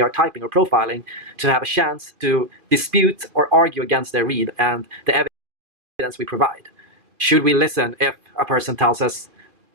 are typing or profiling, to have a chance to dispute or argue against their read and the evidence we provide? Should we listen if a person tells us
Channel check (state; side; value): late; left; 2.5 ms